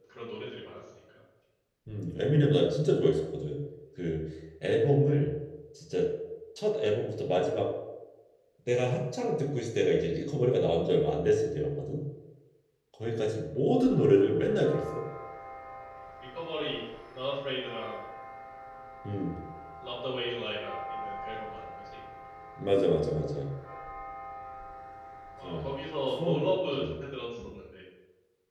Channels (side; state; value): both; identical; correlation 1.00